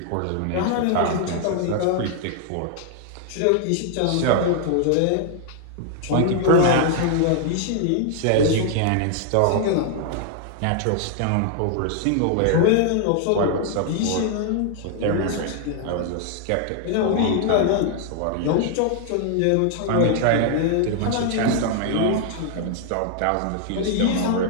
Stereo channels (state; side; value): different; both; correlation 0.00